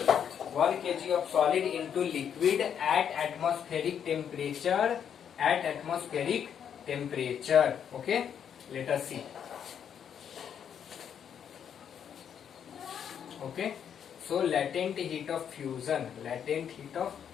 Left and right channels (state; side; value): quieter; right; 8.4 dB